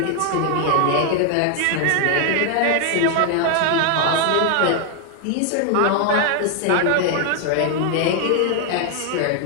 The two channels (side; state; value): both; different; correlation 0.00